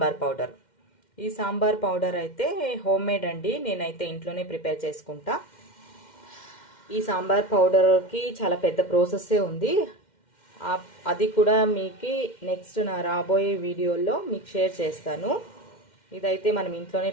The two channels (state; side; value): late; right; 2.1 ms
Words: పౌడర్. ఈ సాంబార్ పౌడర్ అయితే హోమ్ మేడ్ అండి, నేనైతే ఇంట్లోనే ప్రిపేర్ చేసుకుంటా. ఈ సాంబార్ పౌడర్కి చాలా పెద్ద ప్రాసెస్సే ఉంది. అది కూడా మీకు నెక్స్ట్ నా రాబోయే వీడియోలో మీకు షేర్ చేస్తాను. ఇదైతే మనం ఇంట్లోనే